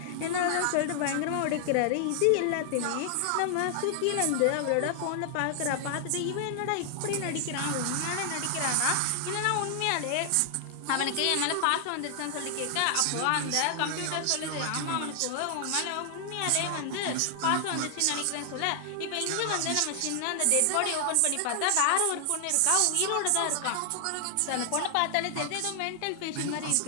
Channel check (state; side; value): different; both; correlation 0.00